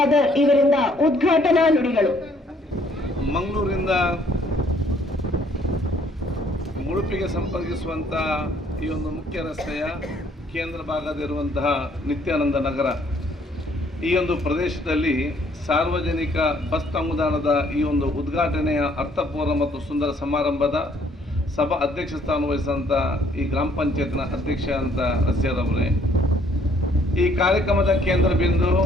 ಇವರಿಂದ ಉದ್ಘಾಟನಾ ನುಡಿಗಳು. ಮಂಗಳೂರಿನಿಂದ ಉಡುಪಿಗೆ ಸಂಪರ್ಕಿಸುವಂತಹ ಈ ಒಂದು ಮುಖ್ಯ ರಸ್ತೆಯ ಕೇಂದ್ರ ಭಾಗದಲ್ಲಿರುವಂತಹ ನಿತ್ಯಾನಂದ ನಗರ, ಈ ಒಂದು ಪ್ರದೇಶದಲ್ಲಿ ಸಾರ್ವಜನಿಕ ಬಸ್ ತಂಗುದಾಣದ ಈ ಒಂದು ಉದ್ಘಾಟನೆಯ ಅರ್ಥಪೂರ್ಣ ಮತ್ತು ಸುಂದರ ಸಮಾರಂಭದ ಸಭಾ ಅಧ್ಯಕ್ಷ ಸ್ಥಾನ ವಹಿಸಿದಂಥ ಈ ಗ್ರಾಮ ಪಂಚಾಯತ್ನ ಅಧ್ಯಕ್ಷ ಅಂತ ರಸ್ಯಾರವರೇ, ಈ ಕಾರ್ಯಕ್ರಮದ ಕೇಂದ್ರ ಬಿಂದು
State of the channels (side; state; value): both; normal; correlation 0.63